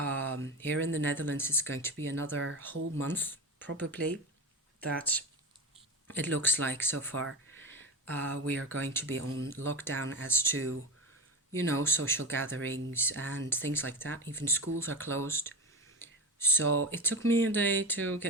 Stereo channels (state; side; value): normal; both; correlation 0.21